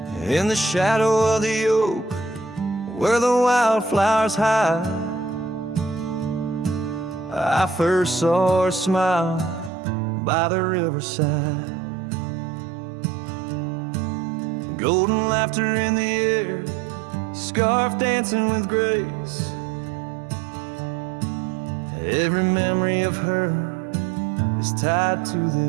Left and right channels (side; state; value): left; drops out; at 9.7 s